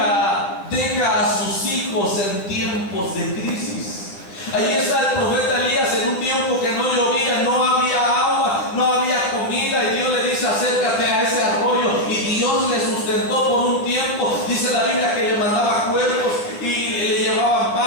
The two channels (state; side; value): late; right; 10 ms